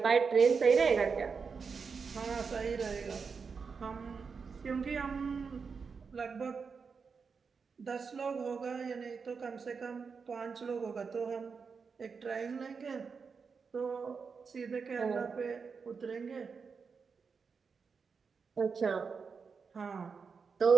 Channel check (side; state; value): left; quieter; 5.4 dB